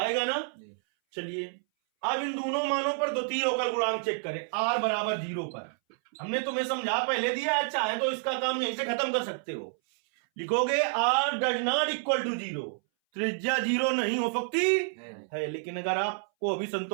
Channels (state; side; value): silent; left; 58 dB below the other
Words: ना। चलिए अब इन दोनों मानों पर द्वितीय अवकल गुणांक चेक करें। आर बराबर 0 पर हमने तुम्हें समझा पहले दिया है, चाहे तो इसका काम यहीं से खत्म कर सकते हो। लिखोगे R does not equal to 0, त्रिज्या 0 नहीं हो सकती है। लेकिन अगर आपको अभी